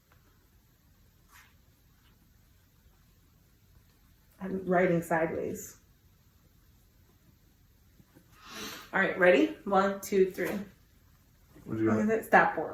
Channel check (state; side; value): identical; both; correlation 1.00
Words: I'm writing sideways. All right, ready? 1, 2, 3. What do you got?